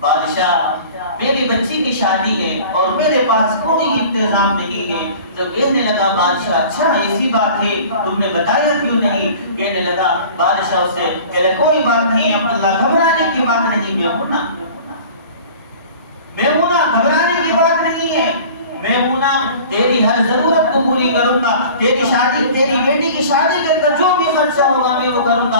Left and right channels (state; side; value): inverted; both; correlation -0.43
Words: بادشاہ میری بچی کی شادی ہے اور میرے پاس کوئی انتظام نہیں ہے۔ تو کہنے لگا بادشاہ اچھا ایسی بات ہے، تم نے بتایا کیوں نہیں؟ کہنے لگا بادشاہ اس سے کہ کوئی بات نہیں عبداللہ، گھبرانے کی بات نہیں، میمونہ گھبرانے کی بات نہیں ہے، میمونہ تیری ہر ضرورت کو پوری کروں گا، تیری شادی، تیری بیٹی کی شادی کے اندر جو بھی خرچہ ہوگا میں وہ کروں